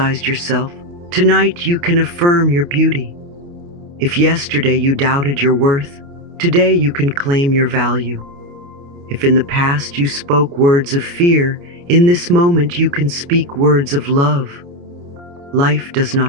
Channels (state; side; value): late; left; 29 ms